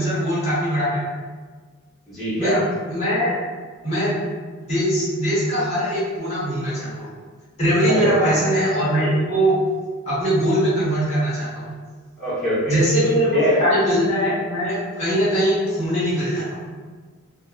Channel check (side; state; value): both; normal; correlation 0.37